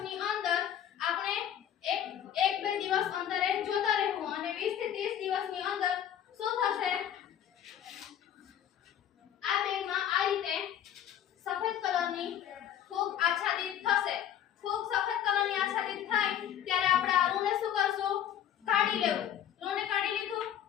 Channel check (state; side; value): quieter; right; 10.2 dB